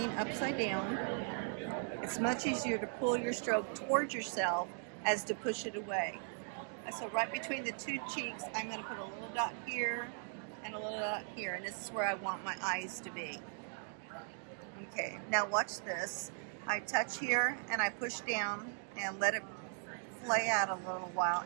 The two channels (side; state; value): left; silent; 52 dB below the other